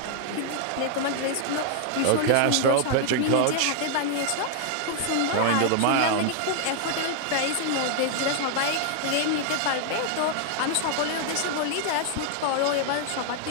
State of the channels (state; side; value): different; both; correlation 0.00